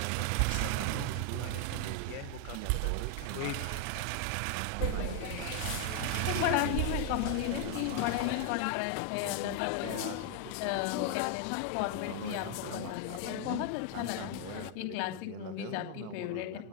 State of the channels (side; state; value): both; different; correlation 0.00